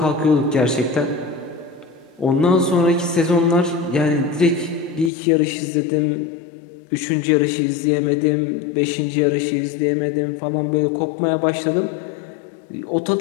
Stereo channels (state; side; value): drops out; right; at 5.1 s